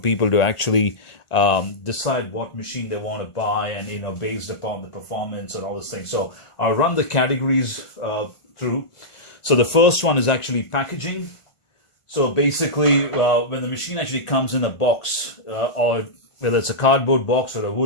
to actually decide what machine they want to buy, and based upon the performance and all those things. So I'll run the categories through. So the first one is actually packaging. So basically when the machine actually comes in a box, or whether it's a cardboard box or a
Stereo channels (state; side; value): late; right; 1.5 ms